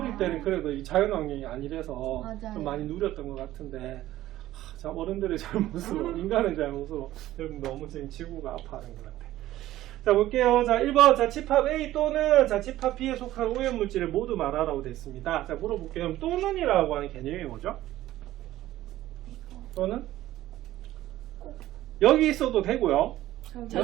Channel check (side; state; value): left; quieter; 14.7 dB